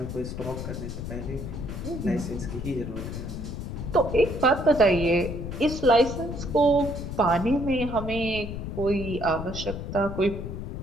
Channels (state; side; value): noise; left; rumble, 6 dB below the sound